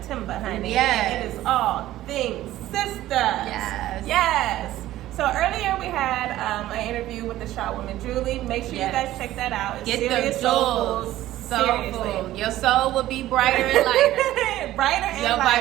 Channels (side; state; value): left; quieter; 14.6 dB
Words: honey. Yes. And it is all things sisters. Yes. Yes. So earlier we had an interview with the Shaw woman Julie. Make sure you guys check that out. It's Get serious the soul jewels. food. Soul Seriously. food. Your soul will be brighter and lighter. Brighter and Your